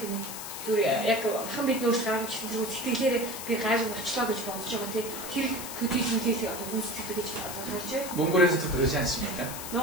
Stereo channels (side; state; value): left; noise; hiss, 9 dB below the sound